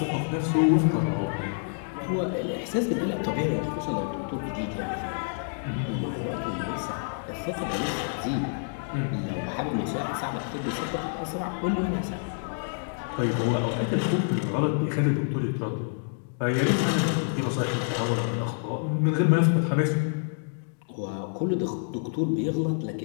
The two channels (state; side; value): silent; right; digital silence